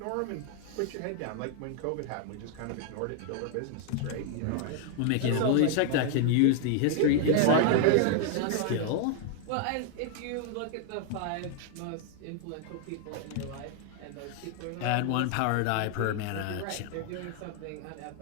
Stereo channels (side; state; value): both; different; correlation 0.00